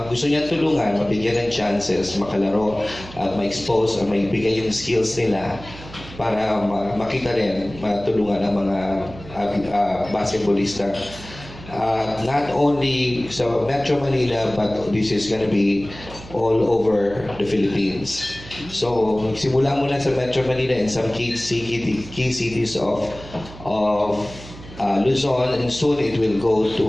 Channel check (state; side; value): noise; right; hum, 16 dB below the sound